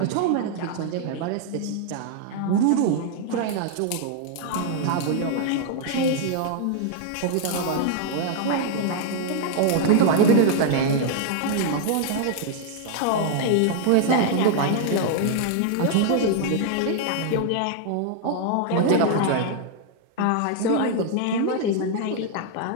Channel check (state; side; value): different; both; correlation 0.00